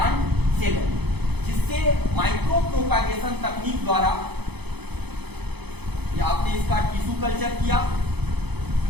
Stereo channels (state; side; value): late; left; 0.98 ms